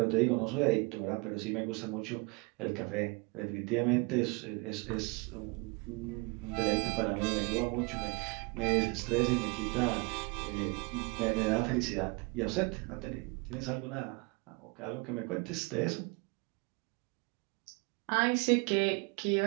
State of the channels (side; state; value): left; quieter; 28.5 dB